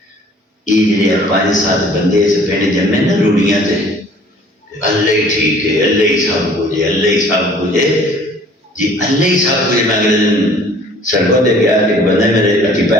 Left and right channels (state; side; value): normal; both; correlation 0.53